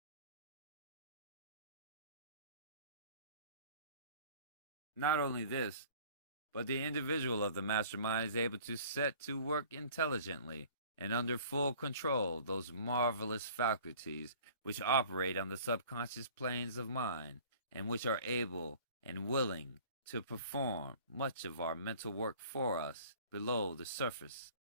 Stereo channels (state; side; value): inverted; both; correlation -0.48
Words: Not only this, but the individual of the mastermind is able to set to work intelligently and under full control those marvelous faculties which operate on the subconscious planes of mind, and which are able and willing to perform much of our mental work for us below the surface